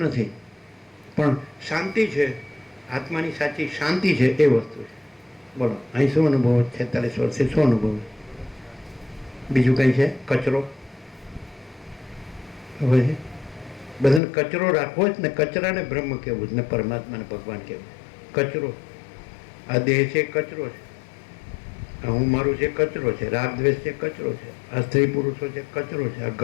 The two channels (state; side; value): drops out; right; at 14.2 s